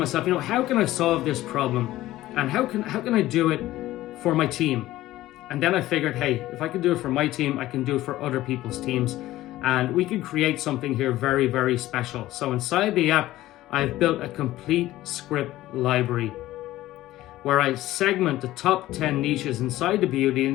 how can I solve this problem? And how can I do it for my team? And then I figured, hey, if I can do it for my team, I can do it for other people's teams. And we can create something here very, very special. So inside the app, I've built a complete script library where I segment the top 10 niches inside the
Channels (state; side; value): quieter; right; 15.7 dB